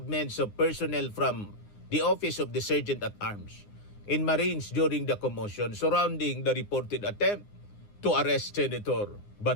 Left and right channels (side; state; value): right; late; 9.7 ms